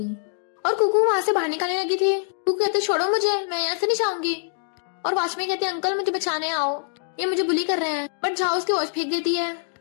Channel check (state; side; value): silent; right; digital silence